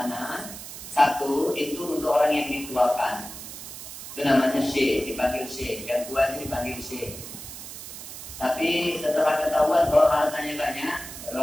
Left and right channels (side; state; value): right; noise; hiss, 11 dB below the sound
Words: satu itu untuk orang yang dituakan. Itu namanya syekh, dipanggil syekh, yang tua itu dipanggil syekh. Tapi setelah ketahuan bahwa hartanya banyak, baru